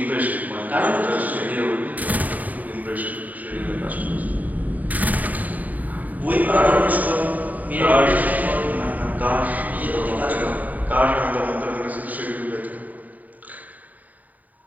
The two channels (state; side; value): late; left; 0.077 ms